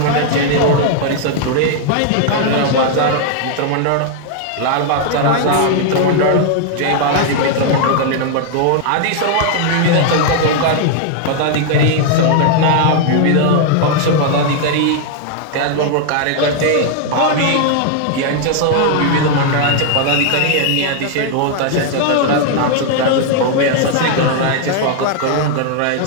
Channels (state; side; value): different; both; correlation 0.00